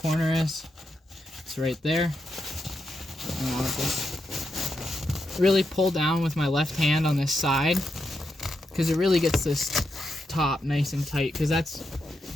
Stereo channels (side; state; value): both; normal; correlation 0.84